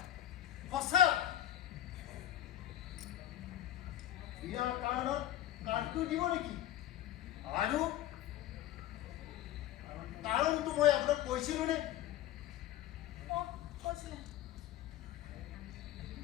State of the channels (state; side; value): quieter; right; 12.7 dB